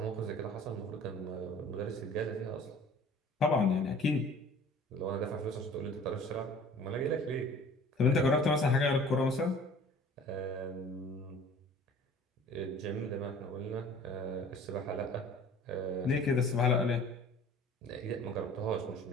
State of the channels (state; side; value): normal; both; correlation 0.47